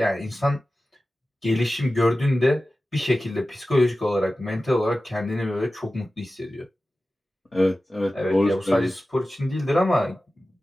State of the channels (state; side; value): normal; both; correlation 0.95